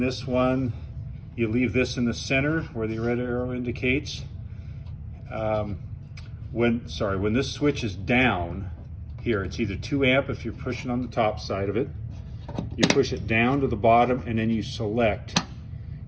one, you leave this in the center where the red arrow indicates. When this switch is down here, it's either 2 amp if you're pushing on the top side of it. You push it down to the bottom and then you select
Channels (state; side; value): identical; both; correlation 1.00